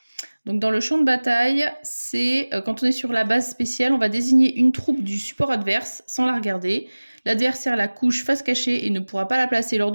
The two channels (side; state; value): both; inverted; correlation -1.00